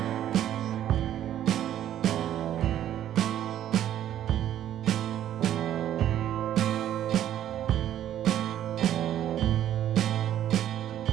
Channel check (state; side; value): quieter; left; 11.4 dB